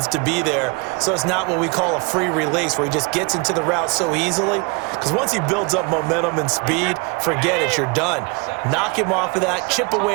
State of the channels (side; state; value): left; quieter; 30.2 dB